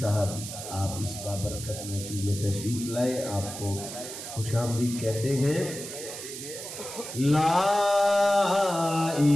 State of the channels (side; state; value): right; noise; hiss, 9 dB below the sound